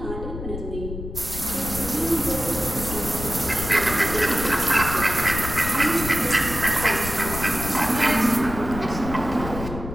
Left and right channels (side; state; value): left; noise; rumble, 8 dB below the sound